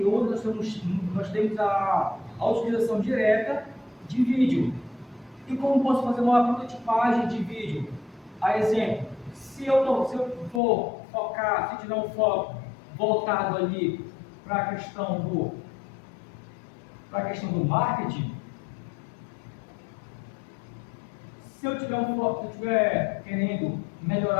hoje nós temos a utilização direta de vídeo. E como posso fazer uma prototipagem de vídeo? A exemplo, se eu for focar, se tiver um foco voltado ali para a questão do marketing, se eu estiver querendo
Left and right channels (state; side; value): drops out; right; at 10.6 s